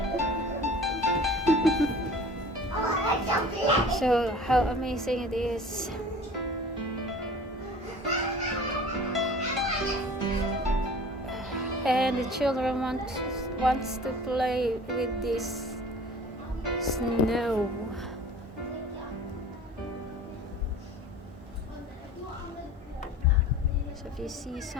So how amazing it is. And the children wants to play with this snow. So if you see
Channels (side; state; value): both; normal; correlation 0.43